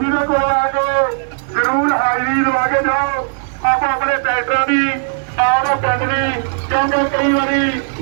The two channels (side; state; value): left; silent; digital silence